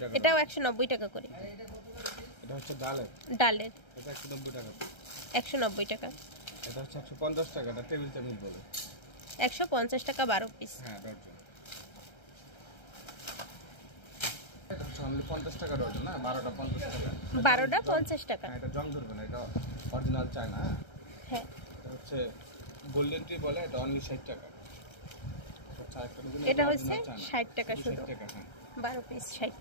টাকা। এটাও 190 টাকা করে। এটা হচ্ছে ডালের, ডালের এটা 190 টাকা। 190 টাকা। এটা হচ্ছে 150 টাকা, এটা টেবিল চামিচ বলে। 150 টাকা 12 পিস। হ্যাঁ, ডজন। এটা হচ্ছে অনলি 50 টাকা ডজন। না, 12টা 50 টাকা। 12টা 50 টাকা। হ্যাঁ, এটা জং ধরবে না, এটা অরিজিনাল চায়না। হ্যাঁ, এটা হচ্ছে গোল্ডেন টি বলে, এটা অনলি 60 টাকা। এটা হচ্ছে 60 টাকা শুধু। 60 টাকা। হ্যাঁ, 12 পিস 60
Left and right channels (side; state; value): right; late; 1.3 ms